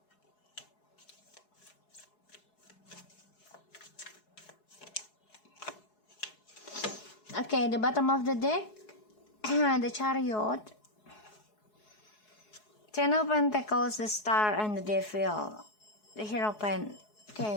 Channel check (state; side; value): late; right; 4.7 ms